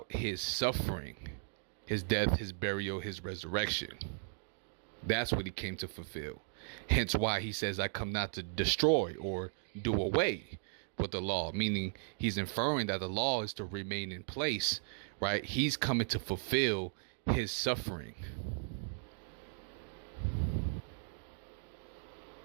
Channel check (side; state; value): left; silent; digital silence